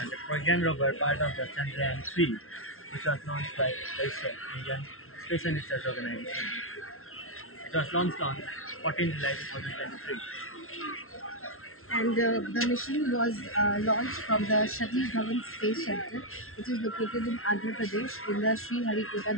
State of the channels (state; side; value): late; right; 0.62 ms